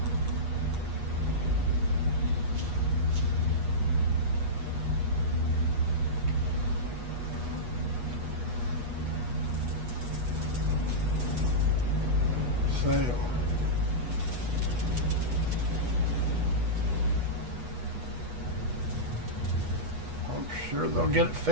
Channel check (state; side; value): late; left; 8.3 ms